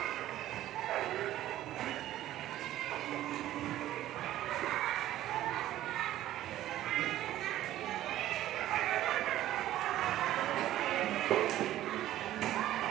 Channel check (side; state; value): left; quieter; 13.7 dB